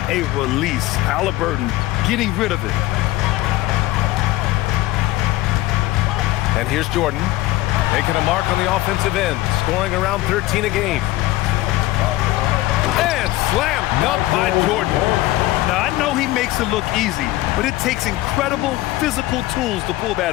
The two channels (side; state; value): right; quieter; 16.9 dB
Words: a release. Halliburton getting rid of it. And here's Jordan making a mark on the offensive end, scoring around 13 a game. And slam dunk by Jordan. Now, I know he makes it look easy, but it takes incredible physical tools to pull that